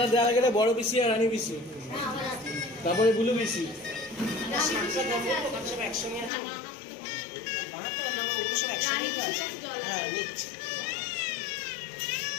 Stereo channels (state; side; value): drops out; right; at 6.3 s